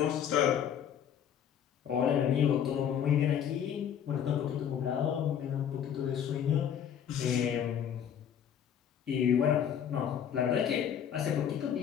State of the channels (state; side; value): quieter; right; 8.9 dB